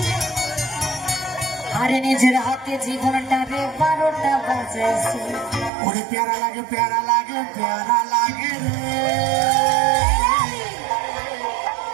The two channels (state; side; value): drops out; left; at 5.7 s